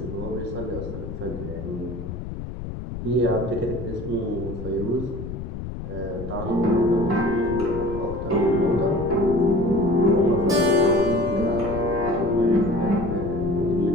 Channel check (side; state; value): left; noise; rumble, 8 dB below the sound